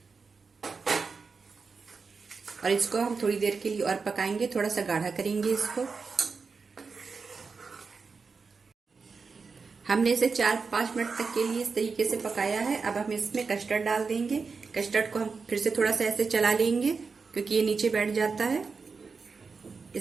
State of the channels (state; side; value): quieter; left; 4.9 dB